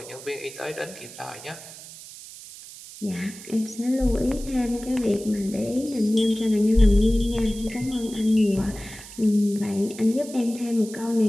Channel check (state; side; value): noise; right; hiss, 16 dB below the sound